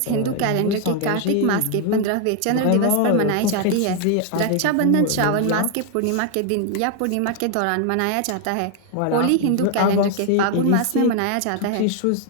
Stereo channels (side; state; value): both; different; correlation 0.00